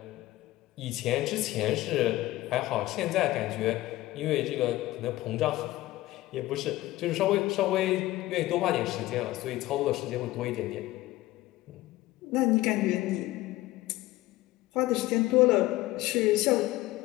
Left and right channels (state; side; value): quieter; right; 17.3 dB